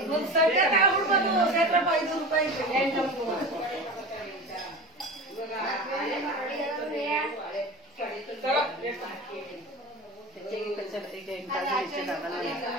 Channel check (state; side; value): normal; both; correlation 0.31